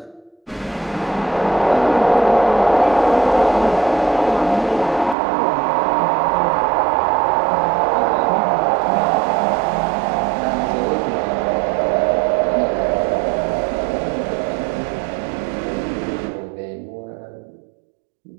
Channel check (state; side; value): drops out; left; at 5.2 s